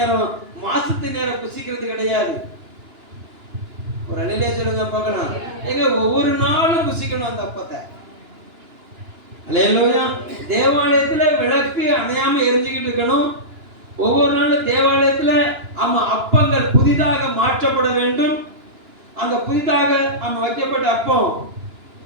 மாசத்துக்கு நேரம் புசிக்கிறது கிடையாது. ஒரு அணிலே சொல்லுங்க பார்க்கலாம். எங்க ஒவ்வொரு நாளும் புசிக்கணும் அந்த அப்பத்தை. அல்லேலூயா. தேவாலயத்துல விளக்கு அணையாம எரிஞ்சுக்கிட்டு இருக்கணும். ஒவ்வொரு நாளும் தேவாலயத்துல அப்பங்கள் புதிதாக மாற்றப்பட வேண்டும். அந்த புதிதாக வைக்கப்பட்ட அப்பம்,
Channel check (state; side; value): late; left; 2.9 ms